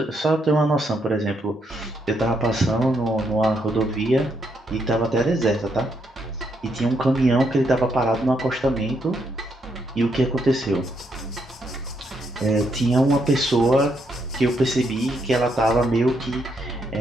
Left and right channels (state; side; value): normal; both; correlation 0.76